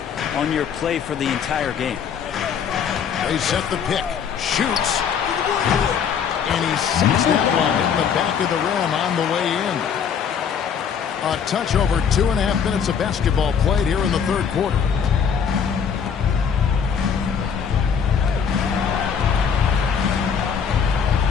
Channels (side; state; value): right; quieter; 7.2 dB